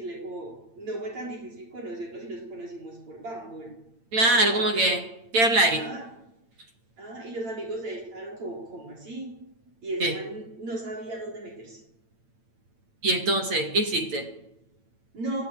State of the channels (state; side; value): late; left; 8.8 ms